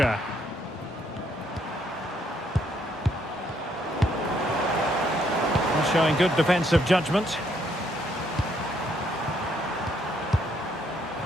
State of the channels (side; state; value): both; normal; correlation 0.71